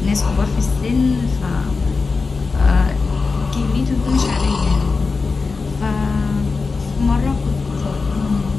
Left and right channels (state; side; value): quieter; right; 4.3 dB